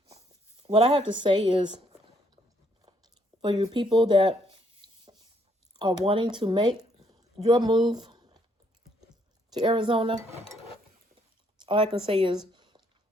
what I have to say is, for you people that are wanting to make your move to Arizona, all I can say is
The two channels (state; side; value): normal; both; correlation 0.70